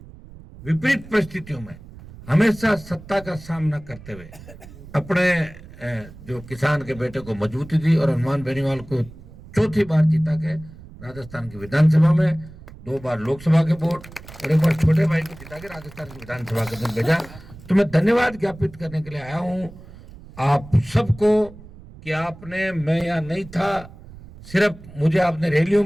विपरीत परिस्थितियों में हमेशा सत्ता का सामना करते हुए अपने जो किसान के बेटे को मजबूती दी और हनुमान बेनीवाल को चौथी बार जीता के राजस्थान की विधानसभा में, 2 बार लोकसभा के वोट और 1 बार छोटे भाई को जिता के राजस्थान की विधानसभा के दिन भेजा। तो मैं धन्यवाद ज्ञापित करने के लिए आया हूं आप सबको कि आपने, मैं यहाँ नहीं था, सिर्फ मुझे आपने रैलियों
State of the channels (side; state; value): right; noise; rumble, 18 dB below the sound